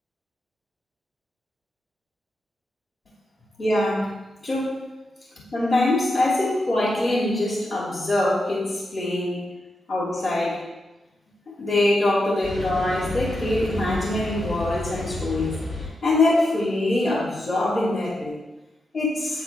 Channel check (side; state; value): both; normal; correlation 0.86